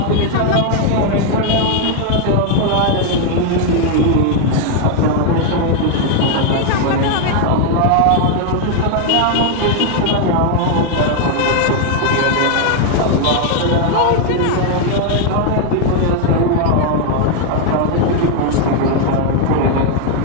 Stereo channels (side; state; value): both; different; correlation 0.00